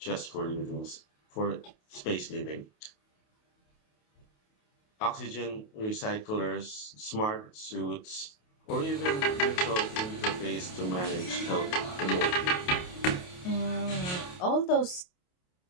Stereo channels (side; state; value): right; late; 28 ms